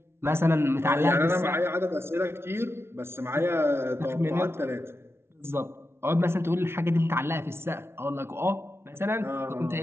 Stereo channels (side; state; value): left; late; 0.12 ms